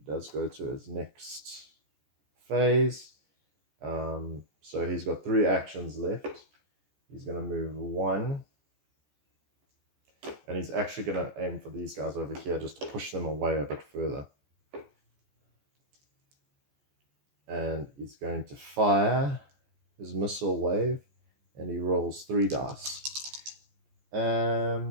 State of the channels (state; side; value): late; left; 14 ms